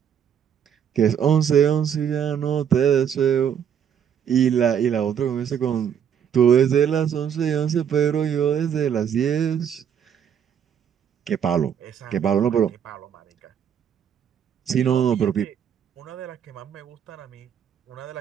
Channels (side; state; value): left; quieter; 8.5 dB